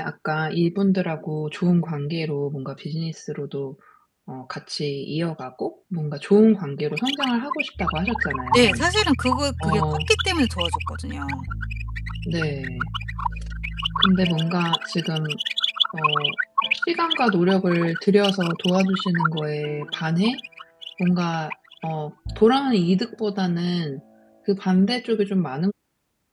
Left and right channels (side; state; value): both; identical; correlation 1.00